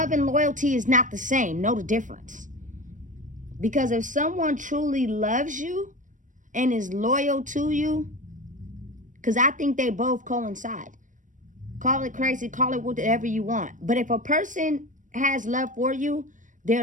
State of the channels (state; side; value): late; left; 0.37 ms